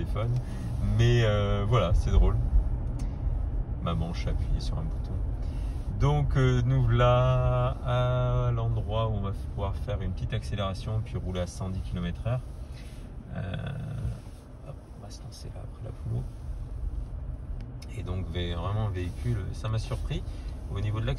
Mais voilà, c'est drôle. Ma manche a appuyé sur un bouton. Donc nous voilà à l'endroit où on va pouvoir faire une petite accélération puis rouler à 110 km/h. On va se lancer là après la poule. Et donc vraiment un véhicule, ça m'a surpris. Au niveau de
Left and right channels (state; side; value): identical; both; correlation 1.00